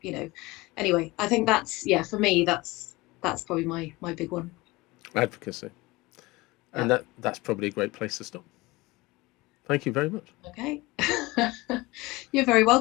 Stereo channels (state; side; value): quieter; right; 21.7 dB